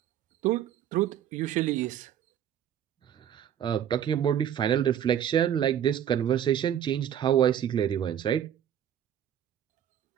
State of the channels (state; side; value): quieter; left; 9.9 dB